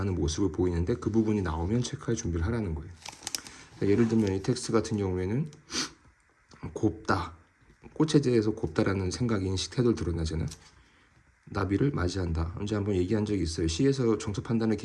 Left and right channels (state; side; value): identical; both; correlation 1.00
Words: 모습을 보이는데 그 부분이 나오면 체크할 준비를 하라는 거예요. 예를 들면 이 텍스트 같은 경우에는 곱다, 꽃에 대해서 곱다라는 생각, 인식, 태도를 드러나잖아요. 나비를 맞이한다. 언제 한번 얘기한 적이 있어요. 시에서 정서 판단의